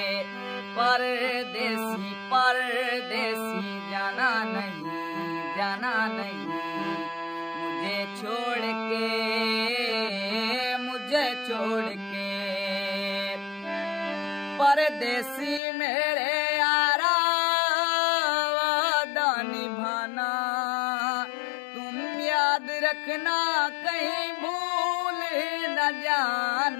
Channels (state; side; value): drops out; right; at 15.6 s